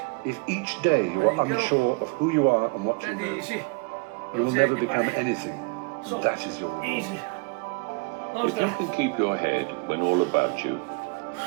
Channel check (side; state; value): left; quieter; 29.3 dB